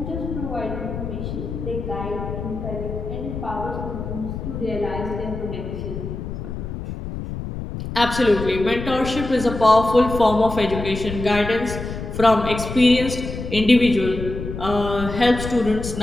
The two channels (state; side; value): noise; left; rumble, 7 dB below the sound